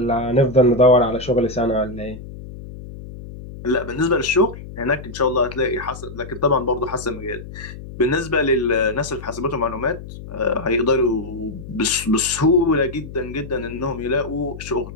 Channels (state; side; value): noise; left; hum, 13 dB below the sound